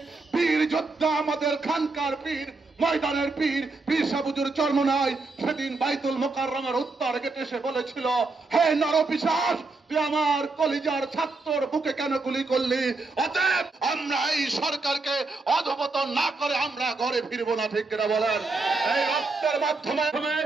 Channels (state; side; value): quieter; left; 3.6 dB